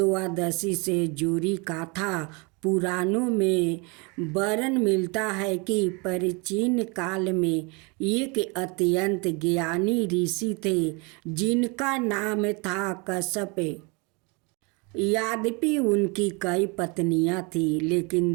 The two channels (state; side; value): quieter; left; 29.9 dB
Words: से जुड़ी कथा पुराणों में वर्णन मिलता है कि प्राचीन काल में एक अत्यंत ज्ञानी ऋषि थे जिनका नाम था कश्यप। यद्यपि उनकी कई पत्नियां थीं, लेकिन